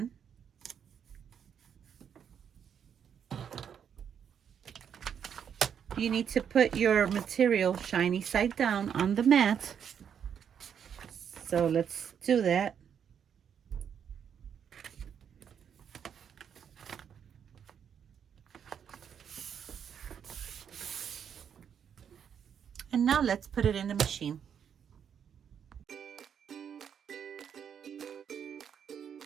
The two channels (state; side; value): quieter; left; 8.0 dB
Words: You need to put your material shiny side down on the mat. So let's do that. And now let's put it in the machine.